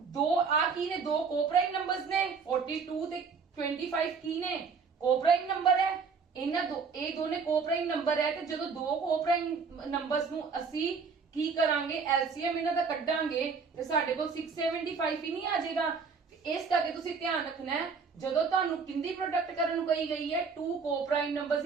ਆ ਕੀ ਨੇ, ਦੋ ਕੋਪ੍ਰਾਈਮ ਨੰਬਰਸ ਨੇ, 42 ਤੇ 25 ਕੀ ਨੇ, ਕੋਪ੍ਰਾਈਮ ਨੰਬਰ ਹੈ। ਇਹ ਦੋਨੇ ਕੋਪ੍ਰਾਈਮ ਨੰਬਰ ਹੈ, ਤੇ ਜਦੋਂ ਦੋ ਕੋਪ੍ਰਾਈਮ ਨੰਬਰਸ ਨੂੰ ਅਸੀਂ ਕੀ ਕਰਾਂਗੇ, LCM ਇਹਨਾਂ ਦਾ ਕੱਢਾਂਗੇ ਤੇ ਸਾਡੇ ਕੋਲ 675 ਹੀ ਨਹੀਂ ਆ ਜਾਏਗਾ। ਇਸ ਕਰਕੇ ਤੁਸੀਂ ਧਿਆਨ ਰੱਖਣਾ ਹੈ, ਜਦੋਂ ਤੁਹਾਨੂੰ ਕਿੰਦੀ ਪ੍ਰੋਡਕਟ ਕਰਨ ਨੂੰ ਕਹੀ ਗਈ ਹੈ, to coprime numbers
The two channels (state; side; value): quieter; left; 5.3 dB